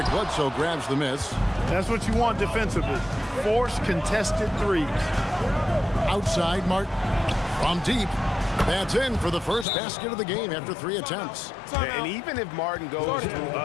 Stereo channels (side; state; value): right; drops out; at 9.7 s